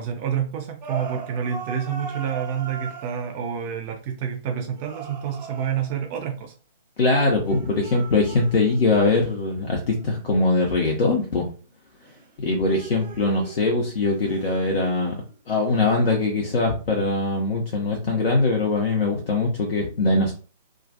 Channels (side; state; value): both; inverted; correlation -0.35